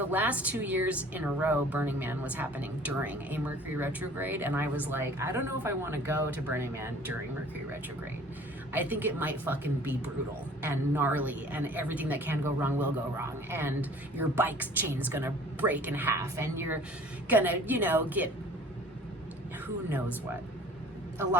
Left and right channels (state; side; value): normal; both; correlation 0.49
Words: last 2 years in a row, Burning Man was happening during a Mercury retrograde, and I was like, I don't know if I want to go to Burning Man during Mercury retrograde. I think it might fucking be brutal and gnarly, and everything that can go wrong will go wrong, and your bike's chain's gonna break in half, and you're gonna, get who knows what. A